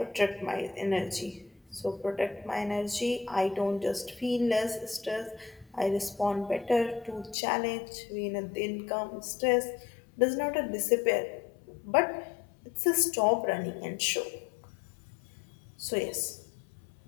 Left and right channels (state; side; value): drops out; right; at 7.4 s